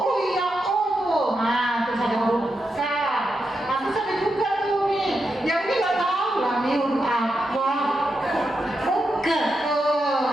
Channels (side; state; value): both; normal; correlation 0.86